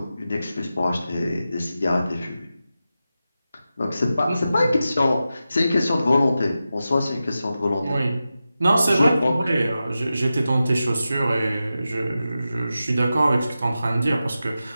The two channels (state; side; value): inverted; both; correlation -0.92